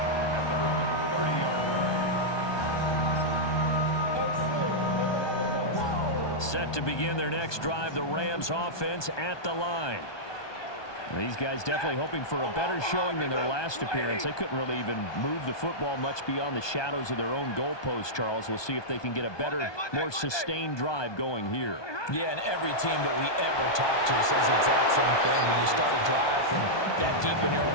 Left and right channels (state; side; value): late; right; 1.2 ms